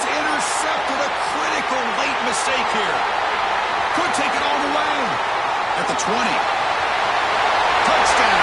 intercepted. A critical late mistake here. Could take it all the way. At the 20.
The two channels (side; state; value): right; noise; hum, 28 dB below the sound